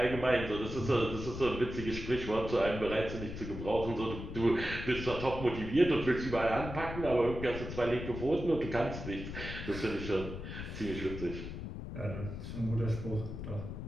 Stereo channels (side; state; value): left; noise; rumble, 7 dB below the sound